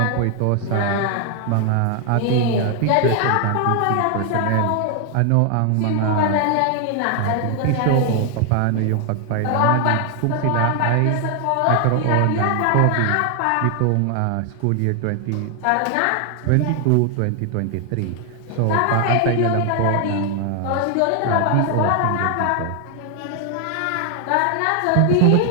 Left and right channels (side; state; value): both; different; correlation 0.00